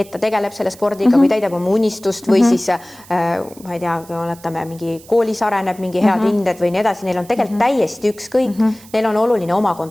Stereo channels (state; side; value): noise; right; hiss, 22 dB below the sound